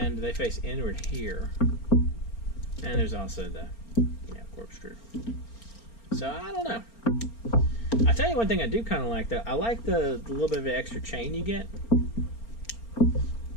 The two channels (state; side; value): late; right; 4.4 ms